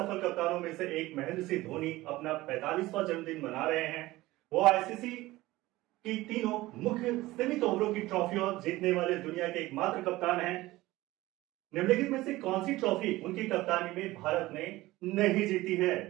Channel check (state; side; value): quieter; left; 18.3 dB